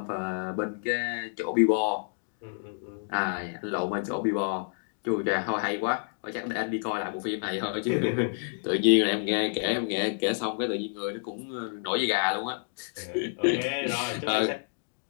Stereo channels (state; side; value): silent; right; digital silence